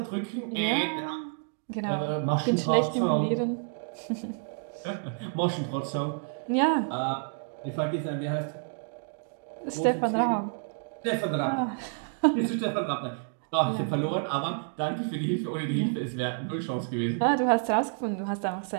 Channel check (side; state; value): left; silent; 58 dB below the other